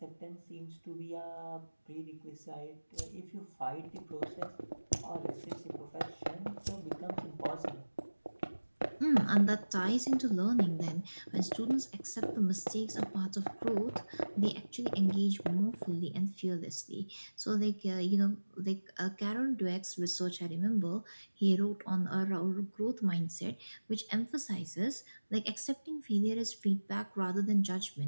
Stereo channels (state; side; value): inverted; both; correlation -1.00